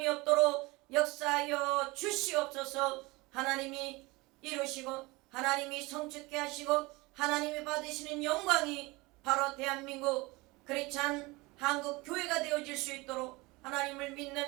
없도록 역사하여 주시옵소서. 하나님이 이루시고 하나님이 성취케 하시고 하나님이 받으시는 영광이 바로 대한민국 크리스찬 한국 교회가 되어질 수 있도록 하나님을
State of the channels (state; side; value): quieter; left; 23.4 dB